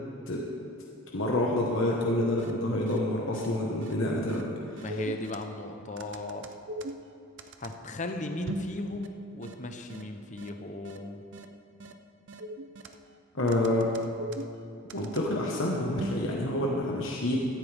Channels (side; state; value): both; normal; correlation 0.42